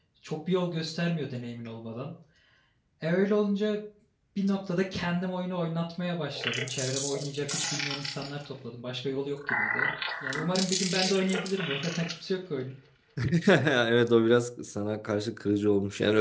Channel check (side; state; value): both; identical; correlation 1.00